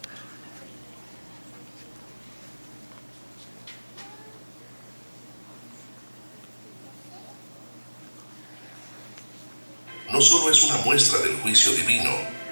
No solo es una muestra del juicio divino,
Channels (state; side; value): inverted; both; correlation -1.00